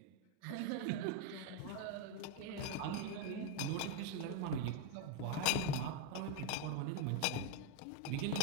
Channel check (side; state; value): both; different; correlation 0.01